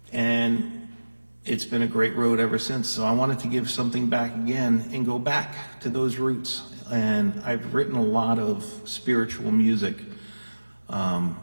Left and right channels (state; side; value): inverted; both; correlation -1.00